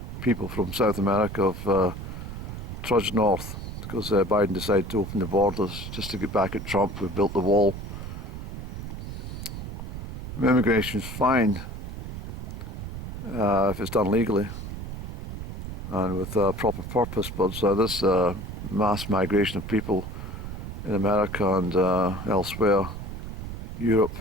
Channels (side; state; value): right; noise; rumble, 8 dB below the sound